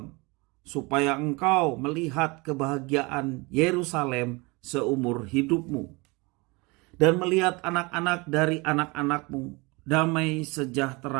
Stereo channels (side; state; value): left; quieter; 26.3 dB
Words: supaya engkau melihat kebahagiaan Yerusalem seumur hidupmu, dan melihat anak-anak dari anak-anakmu, damai